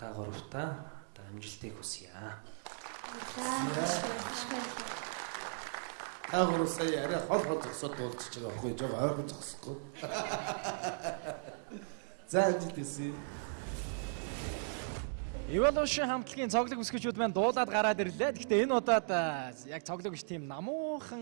гуравтаа амжилтыг хүсье. Таагур сая арай хол зогсоод дуулчих байгаа байхгүй жоо ойрхон зогсохгүй. За амжилт хүсье. Evolution хамтлагийн цоглог өсгөгчүүд маань дуулаад гараад ирлээ. Гэхдээ энэ удаад яг цоглог биш тийм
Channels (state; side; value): silent; left; digital silence